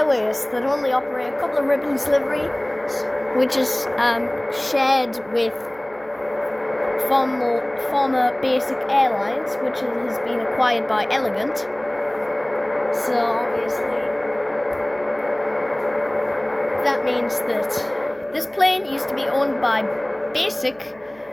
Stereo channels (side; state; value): right; noise; hum, 26 dB below the sound